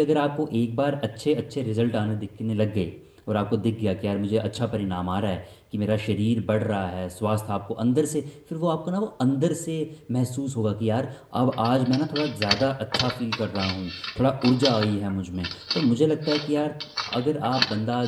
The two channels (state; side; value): identical; both; correlation 1.00